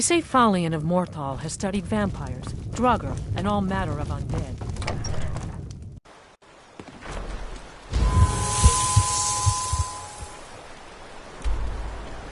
Falion of Morthal has studied vampires, Draugr, and all manner of undead.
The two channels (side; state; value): both; identical; correlation 1.00